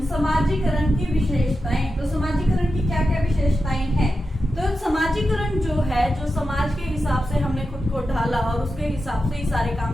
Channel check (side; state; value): both; normal; correlation 0.90